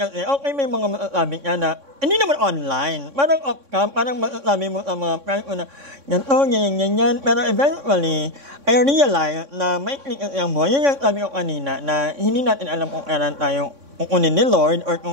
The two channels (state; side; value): late; left; 3.6 ms